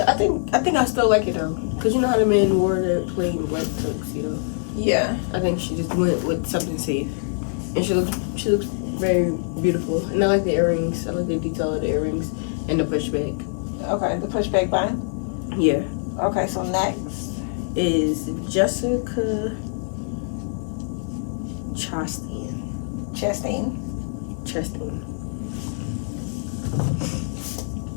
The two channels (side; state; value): right; silent; digital silence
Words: I think I still like it though, cause you know how the men wore the plain white tuxedo. Yeah. I think she just went with something safe, and she looks very beautiful. And I like the earrings. I like the detail of the earrings and the pushback. Okay, the pushback button. Yeah. Okay, so next is Jessica Chastain.